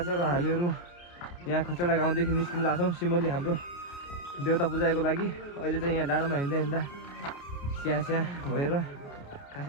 छ र हामीहरू यहाँ खचडा गाउँदेखि निस्किन लाग्छौँ सिमली हाम्रो देउता पूजाको लागि। अहिले चाहिँ यहाँ डाँडोमा हिँड्दा हिँड्दा स्याहाँ भएर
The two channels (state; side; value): late; right; 29 ms